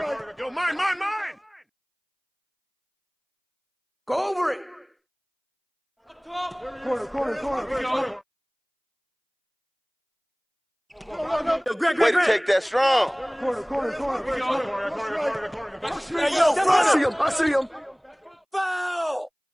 Yo, mine. Go over it. Corner. Way to take that strong. Corner. Hey, yo, front him. I see him. Foul.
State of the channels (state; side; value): identical; both; correlation 1.00